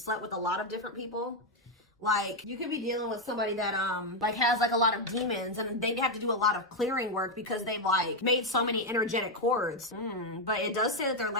with a lot of different people. Like you could be dealing with somebody that like has like a lot of demons, and they have to do a lot of clearing work because they've like made so many energetic cords. But it does say that they're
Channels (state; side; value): normal; both; correlation 0.03